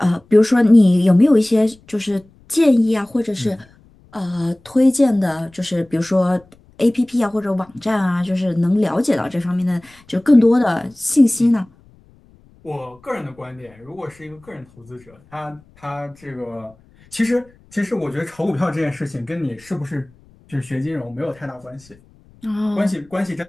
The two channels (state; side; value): noise; left; rumble, 29 dB below the sound